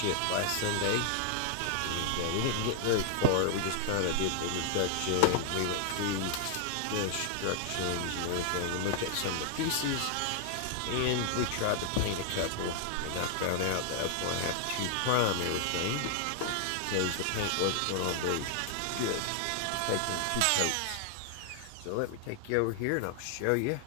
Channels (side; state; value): both; different; correlation 0.00